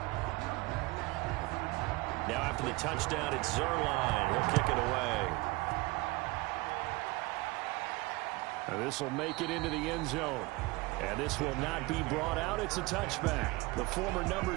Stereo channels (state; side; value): quieter; left; 23.0 dB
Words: Now after the touchdown, it's Zuerlein. He'll kick it away. And this will make it into the end zone. And this will not be brought out. It's a touchback. The former number